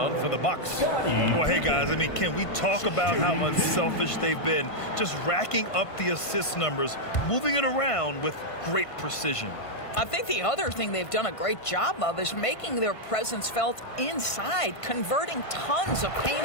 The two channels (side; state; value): right; late; 1.5 ms